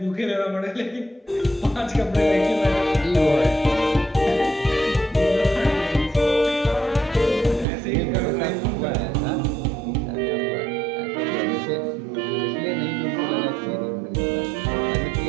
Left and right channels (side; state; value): left; drops out; at 7.7 s